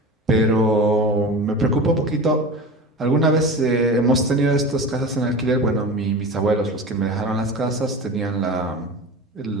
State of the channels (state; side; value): normal; both; correlation 0.32